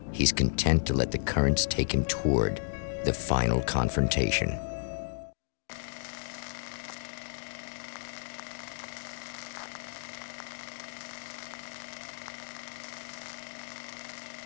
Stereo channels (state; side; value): silent; right; digital silence